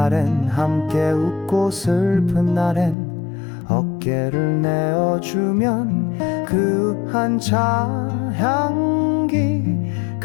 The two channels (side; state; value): right; drops out; at 3.0 s